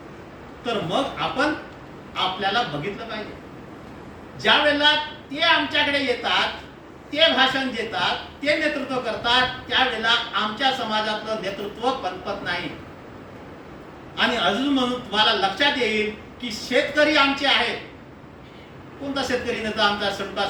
तर मग आपण आपल्याला बघितलं पाहिजे. ज्या वेळेला ते आमच्याकडे येतात ते भाषण देतात, ते नेतृत्व करतात, त्यावेळेला आमच्या समाजातलं नेतृत्व पनपत नाही. आणि अजून म्हणून तुम्हाला लक्षात येईल की शेतकरी आमचे आहेत. कोणता शेतकरी नेता आमचा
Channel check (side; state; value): both; identical; correlation 1.00